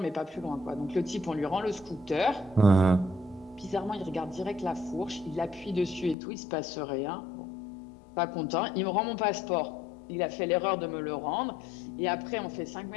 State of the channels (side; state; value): right; drops out; at 6.2 s